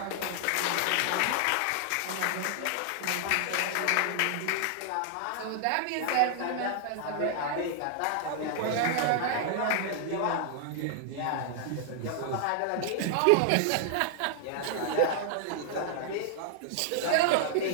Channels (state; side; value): different; both; correlation -0.01